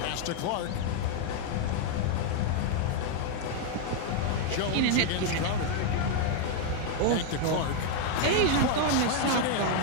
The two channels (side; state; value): both; different; correlation 0.00